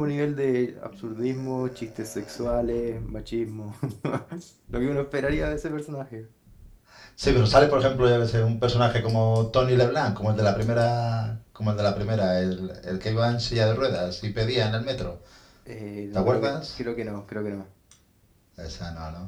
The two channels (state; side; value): identical; both; correlation 1.00